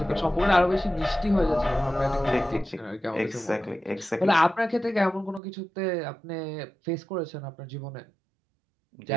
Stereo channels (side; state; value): left; drops out; at 5.4 s